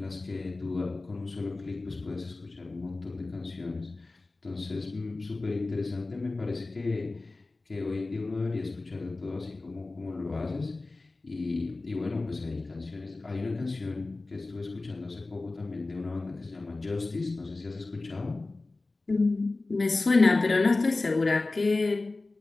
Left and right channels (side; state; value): right; quieter; 3.3 dB